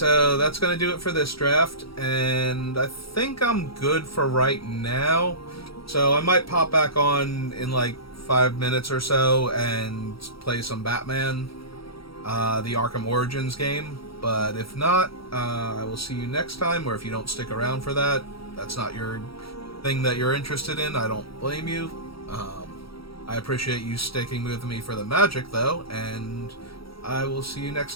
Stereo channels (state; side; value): late; right; 0.75 ms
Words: that's gonna do it for this draft, and I think I'm good for right now. So I might pop back on in like 5 minutes or so and play some Batman, the Arkham Origins game. But if not, I will see you next time, or if you don't stick around for that, that's not your thing that you're interested in, I don't blame you. I appreciate you sticking with me for the Magic, though, and I will see you